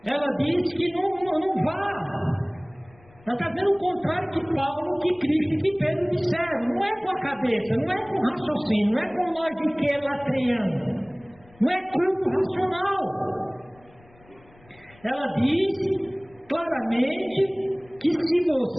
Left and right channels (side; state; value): left; noise; rumble, 27 dB below the sound